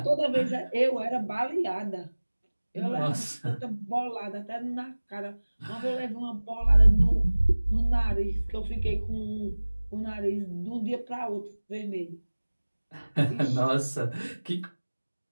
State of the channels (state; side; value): inverted; both; correlation -1.00